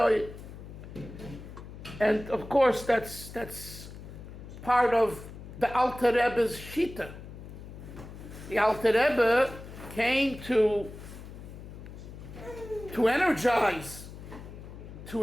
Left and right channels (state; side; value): noise; left; hum, 13 dB below the sound